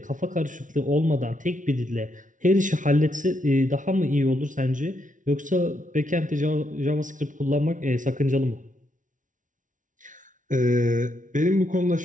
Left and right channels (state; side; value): late; left; 0.37 ms